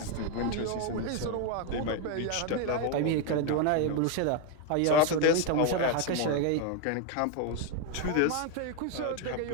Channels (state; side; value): different; both; correlation 0.01